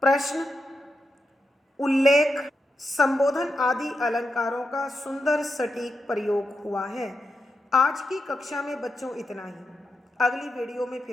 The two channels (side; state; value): both; normal; correlation 0.86